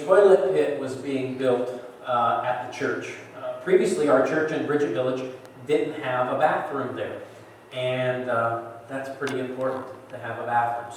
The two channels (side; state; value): both; identical; correlation 1.00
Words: toilet pit was being built at the church. Previously, our church in Bridget Village didn't have a bathroom there. And that's pretty important to have a bathroom.